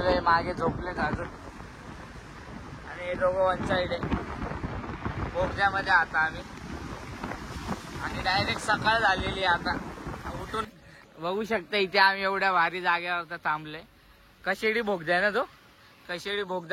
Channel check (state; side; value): identical; both; correlation 1.00